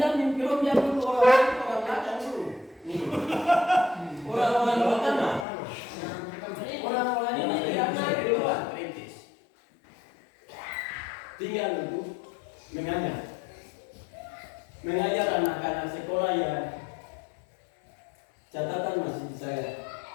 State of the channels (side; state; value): right; drops out; at 5.5 s